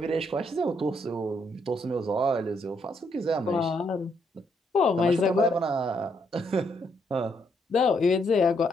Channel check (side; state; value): both; normal; correlation 0.74